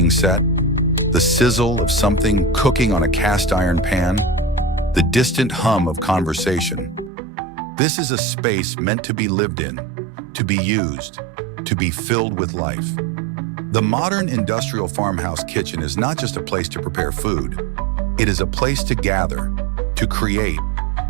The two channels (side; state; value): left; drops out; at 7.1 s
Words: set, the sizzle of something cooking on a cast iron pan, the distant hum of conversation. This is a space meant to be lived in, to be used, to be filled with life. The modern industrial farmhouse kitchen is not just a place to prepare food. It is a place to gather, to create,